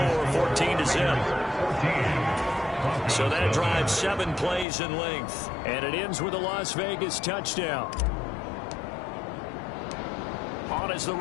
14-0. So that drives 7 plays in length. And it ends with a Las Vegas touchdown. On as the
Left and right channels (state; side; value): drops out; right; at 4.7 s